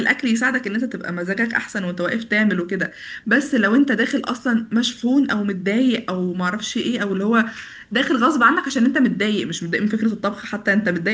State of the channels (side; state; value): both; identical; correlation 1.00